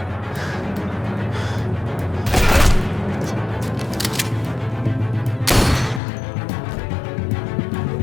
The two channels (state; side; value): drops out; right; at 6.0 s